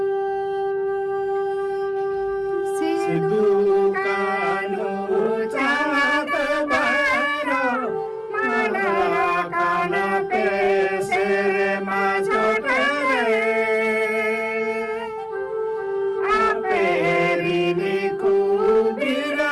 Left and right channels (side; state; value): both; identical; correlation 1.00